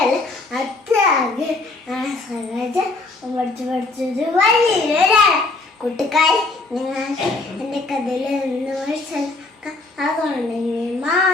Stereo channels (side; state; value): right; quieter; 3.4 dB